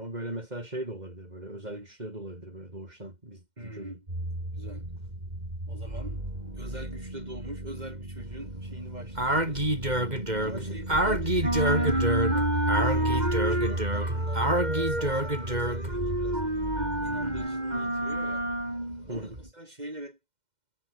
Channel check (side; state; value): left; late; 2.1 ms